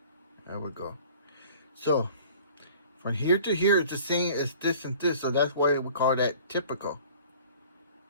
There we go. So from here to here, it's the same as this and this. So that's why we call that typical.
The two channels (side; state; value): both; inverted; correlation -0.48